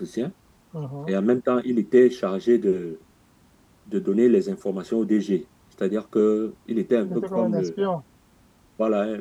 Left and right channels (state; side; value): identical; both; correlation 1.00